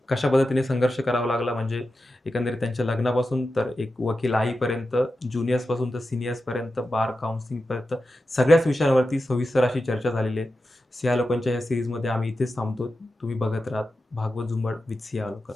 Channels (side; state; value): both; normal; correlation 0.91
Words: कशा पद्धतीने संघर्ष करावा लागला म्हणजे एकंदरीत त्यांच्या लग्नापासून तर एक वकील आईपर्यंत, ज्युनियर्सपासून तर सीनियर्सपर्यंत, बार काउन्सिलिंगपर्यंत सगळ्याच विषयांवरती सविस्तर अशी चर्चा झालेली आहे. सिया लोकांच्या या सिरीजमध्ये आम्ही इथेच थांबतो. तुम्ही बघत राहा भागवत झुंबड विथ सिया लोकन.